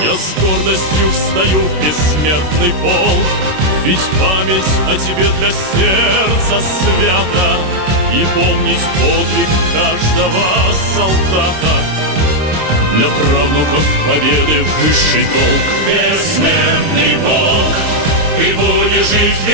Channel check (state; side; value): late; left; 26 ms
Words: Я с гордостью встаю в бессмертный полк, ведь память о тебе для сердца свята, и помнить подвиг каждого солдата для правнуков победы высший долг. Бессмертный Бог, ты будешь жить